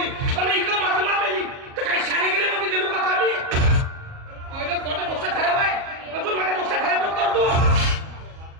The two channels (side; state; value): left; late; 38 ms